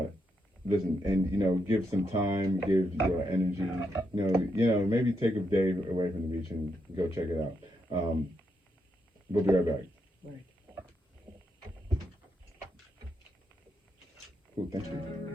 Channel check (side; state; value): both; normal; correlation 0.81